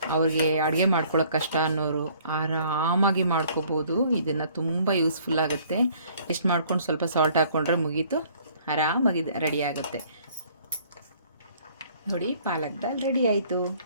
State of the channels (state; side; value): inverted; both; correlation -0.58